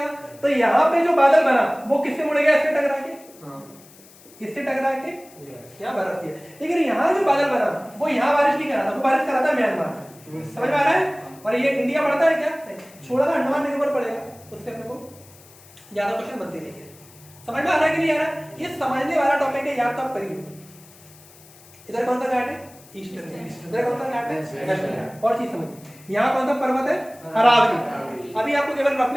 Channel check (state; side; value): noise; left; hiss, 24 dB below the sound